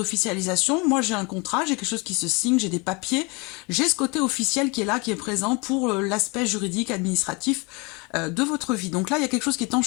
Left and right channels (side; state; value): right; quieter; 28.4 dB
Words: Moi j'ai un contrat, j'ai quelque chose qui se signe, j'ai des papiers, j'ai ce côté officiel qui est là, qui est présent pour l'aspect juridique, administratif de votre vie. Donc là, il y a quelque chose qui est en